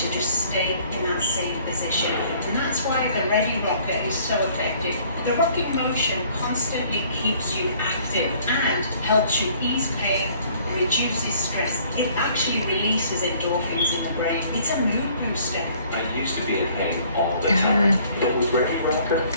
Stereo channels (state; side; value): inverted; both; correlation -0.58